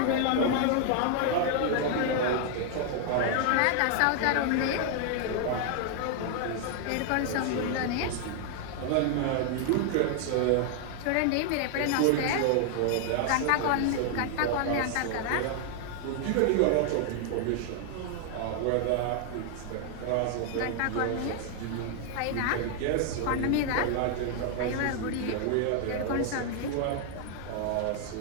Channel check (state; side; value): different; both; correlation 0.00